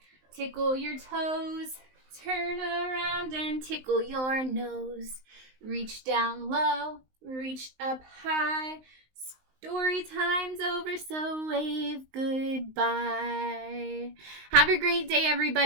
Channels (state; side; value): late; left; 19 ms